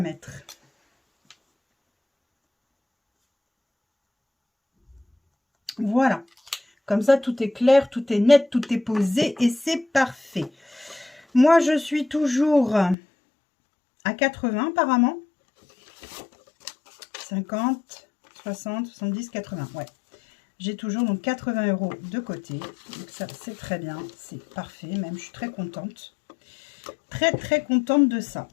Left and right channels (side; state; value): right; drops out; at 13.0 s